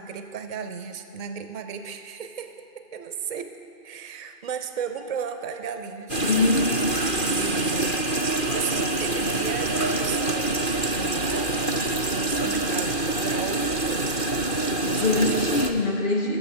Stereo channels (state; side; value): late; right; 2.4 ms